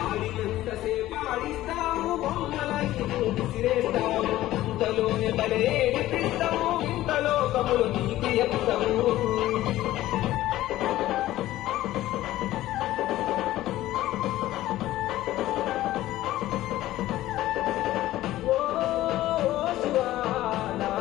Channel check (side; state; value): right; quieter; 15.2 dB